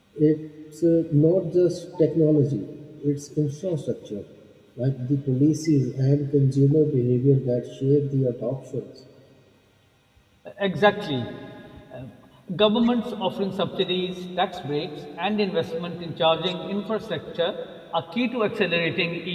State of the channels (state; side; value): identical; both; correlation 1.00